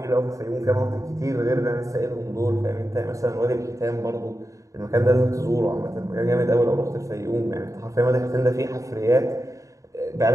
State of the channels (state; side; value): late; left; 0.16 ms